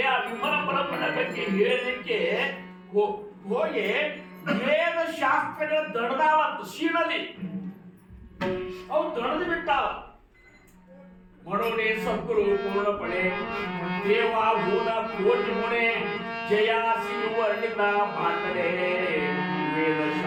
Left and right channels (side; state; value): both; identical; correlation 1.00